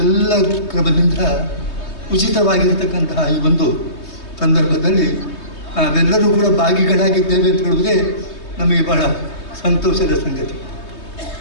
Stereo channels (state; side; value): late; right; 3.2 ms